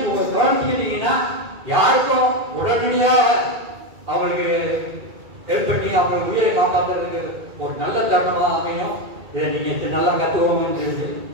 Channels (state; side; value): late; left; 2.3 ms